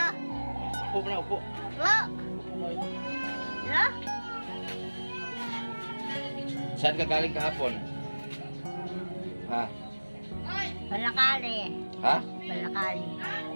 Upo na, upo. Hello? Hello? Saan ka galing kahapon? Ha? Palakali. Ha? Palakali.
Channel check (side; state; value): both; inverted; correlation -1.00